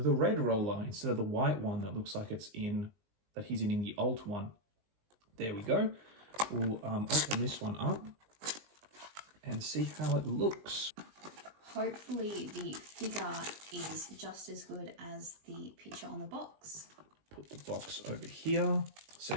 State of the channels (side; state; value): left; late; 20 ms